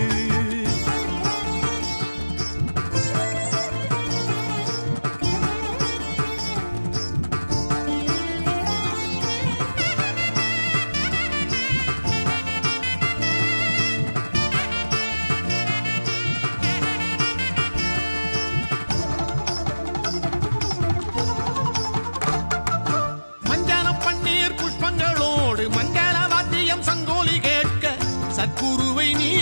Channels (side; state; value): both; inverted; correlation -1.00